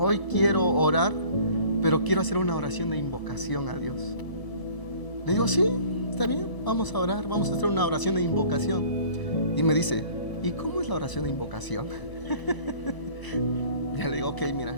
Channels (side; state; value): right; late; 1.0 ms